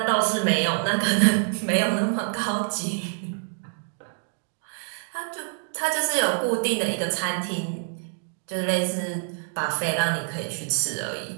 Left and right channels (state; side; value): silent; left; 61 dB below the other